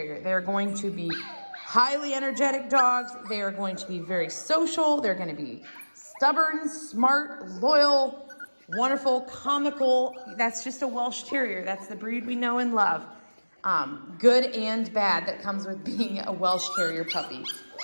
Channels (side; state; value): both; inverted; correlation -1.00